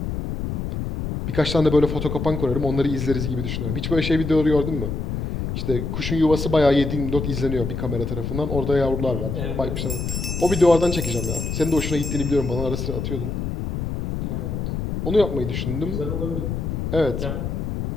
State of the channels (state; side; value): noise; left; rumble, 3 dB below the sound